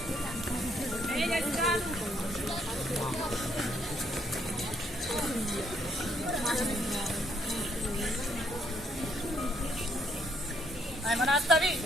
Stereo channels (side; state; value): both; normal; correlation 0.70